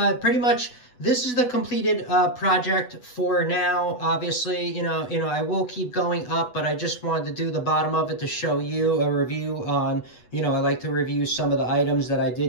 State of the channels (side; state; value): right; late; 8.1 ms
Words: pretty much, this is the completed project for now. Obviously, you know, I will keep going up, but I just wanted to do the bottom of it to show you a review on, you know, I like to review some of the items that I